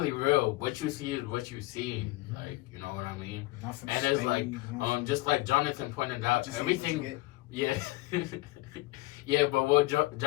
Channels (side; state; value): right; quieter; 20.0 dB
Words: real. What you see is what you see. Like, you know what I mean? Nothing And it's like staged, just like Jonathan pointed out, What you see, everything. what you get. Yeah. Yeah, but what